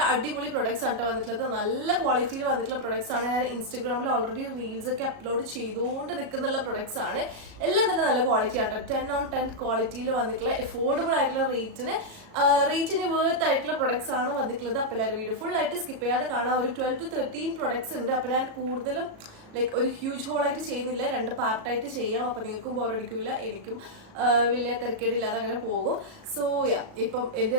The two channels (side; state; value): left; late; 37 ms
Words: അടിപൊളി പ്രൊഡക്ട്സ് ആണ് വന്നിട്ടുള്ളത്. നല്ല ക്വാളിറ്റിയിൽ വന്നിട്ടുള്ള പ്രൊഡക്ട്സ് ആണ്. ഞാൻ ഇൻസ്റ്റഗ്രാമിൽ ഓൾറെഡി റീൽസ് ഒക്കെ അപ്ലോഡ് ചെയ്തുകൊണ്ട് നിൽക്കുന്ന പ്രൊഡക്ട്സ് ആണ്. എല്ലാം തന്നെ നല്ല ക്വാളിറ്റി ആട്ടോ. 10/10 ക്വാളിറ്റിയിൽ വന്നിട്ടുള്ള എഫോർഡബിൾ ആയിട്ടുള്ള റേറ്റിന് വേർത്ത് ആയിട്ടുള്ള പ്രൊഡക്ട്സ് ആണ് വന്നിട്ടുള്ളത്. അപ്പോൾ എല്ലാവരും വീഡിയോ ഫുൾ ആയിട്ട് സ്കിപ്പ് ചെയ്യാതെ കാണാം. ഒരു 12 to 13 പ്രൊഡക്ട്സ് ഉണ്ട്. അപ്പോൾ ഞാൻ കൂടുതലും ഒരു ഹ്യൂജ് ഹോൾ ആയിട്ട് ചെയ്യുന്നില്ല, 2 പാർട്ടായിട്ട് ചെയ്യാം. അപ്പൊ നിങ്ങൾക്കും ബോറടിക്കില്ല, എനിക്കും വലിയ തിരക്കേടില്ലാതെ അങ്ങനെ പോകും. സോ ഇപ്പം എന്റെ